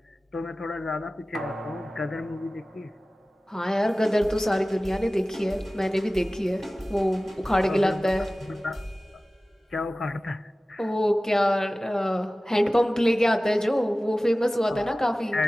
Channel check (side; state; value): both; normal; correlation 0.97